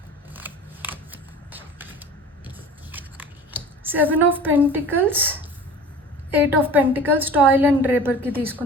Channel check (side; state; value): both; normal; correlation 0.40